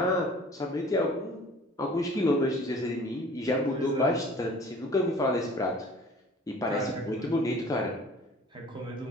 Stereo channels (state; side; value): normal; both; correlation 0.48